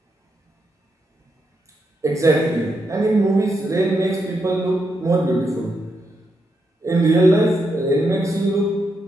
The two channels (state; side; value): normal; both; correlation 0.82